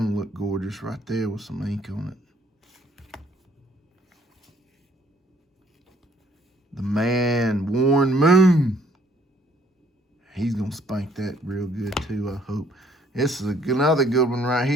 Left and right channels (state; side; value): normal; both; correlation 0.63